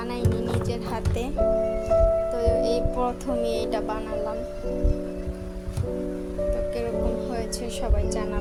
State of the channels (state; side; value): identical; both; correlation 1.00